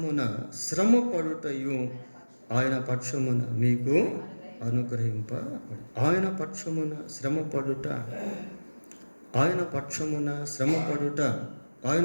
శ్రమపడుటయు ఆయన పక్షమున మీకు అనుగ్రహింపబడి. ఆయన పక్షమున శ్రమపడుట, ఆయన పక్షమున శ్రమపడుట,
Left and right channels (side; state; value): both; inverted; correlation -1.00